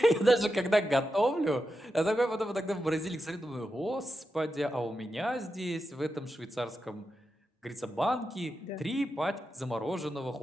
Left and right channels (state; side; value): normal; both; correlation 0.89